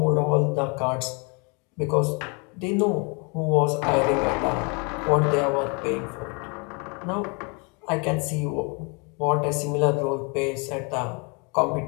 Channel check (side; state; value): right; quieter; 32.7 dB